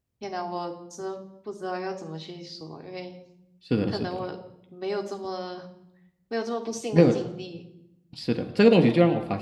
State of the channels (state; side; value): identical; both; correlation 1.00